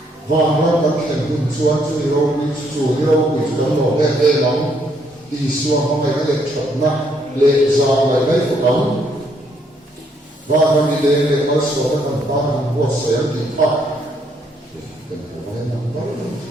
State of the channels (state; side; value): normal; both; correlation 0.71